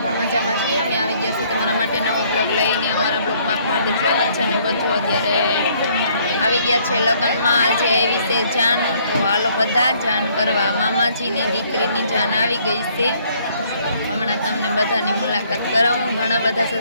પણ મજામાં છીએ. અમે આવી ગયા છીએ તમારા માટે નવો બ્લોગ લઈને. અમારા બ્લોગમાં હાર્દિક સ્વાગત છે. અને બધું અત્યારે આવી ગયા છે લગ્નમાં. આજે આવી છે જાન, તો હાલો બધા જાન કરવા. મામાજીની દીકરીની જાન આવી ગઈ છે. હમણાં તમને બધાની મુલાકાત કરાવું. ઘણા બધા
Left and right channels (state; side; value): inverted; both; correlation -0.64